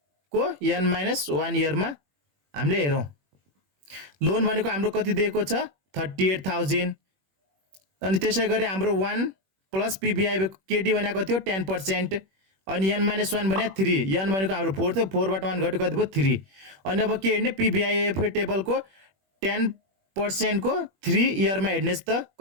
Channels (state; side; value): late; left; 21 ms